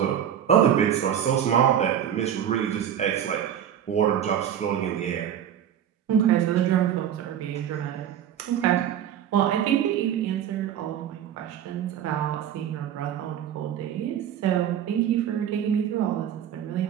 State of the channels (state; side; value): quieter; left; 9.8 dB